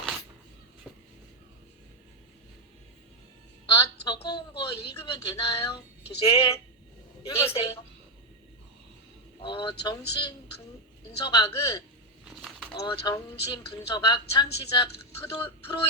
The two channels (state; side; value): normal; both; correlation 0.04